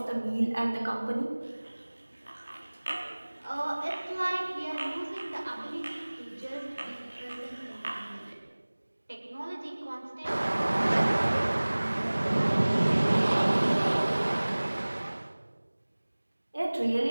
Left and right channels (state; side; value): inverted; both; correlation -1.00